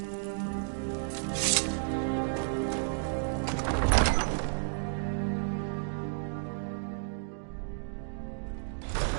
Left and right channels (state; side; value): silent; left; digital silence